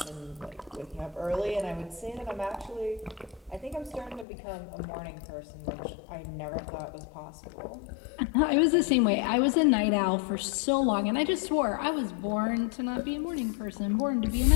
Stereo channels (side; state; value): right; drops out; at 4.2 s